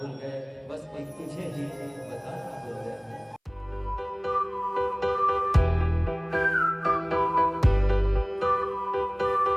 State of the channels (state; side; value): identical; both; correlation 1.00